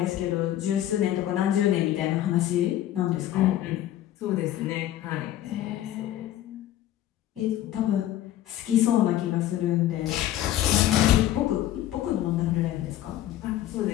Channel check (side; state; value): right; quieter; 12.8 dB